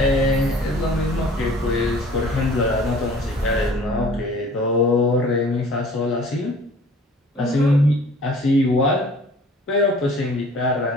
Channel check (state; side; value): normal; both; correlation 0.49